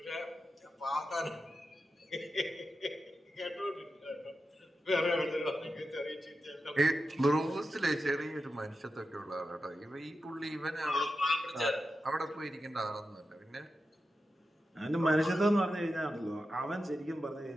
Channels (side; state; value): both; normal; correlation 0.90